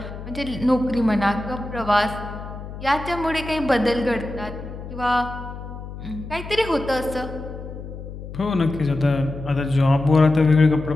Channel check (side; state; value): left; noise; hum, 11 dB below the sound